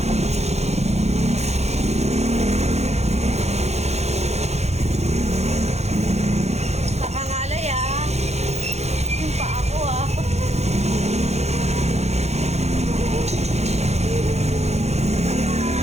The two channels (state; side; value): late; left; 0.31 ms